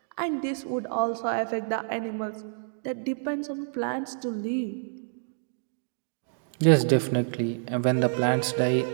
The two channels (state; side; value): silent; left; digital silence